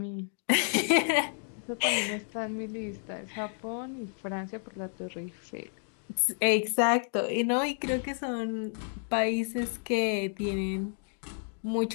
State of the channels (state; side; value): silent; right; 56 dB below the other